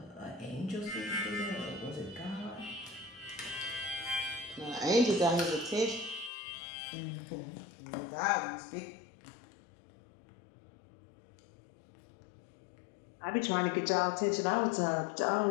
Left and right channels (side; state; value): right; drops out; at 6.3 s